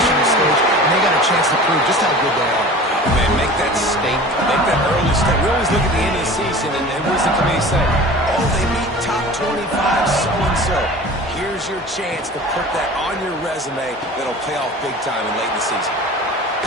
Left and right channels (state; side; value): normal; both; correlation 0.39